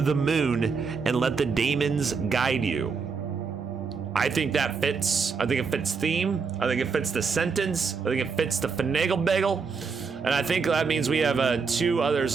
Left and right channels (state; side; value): quieter; left; 5.2 dB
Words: moon and let the daemons guide you. I think that fits. I think it fits theme. I think it fits the sentence. I think it fits the finagle bagel. And I think that means we have two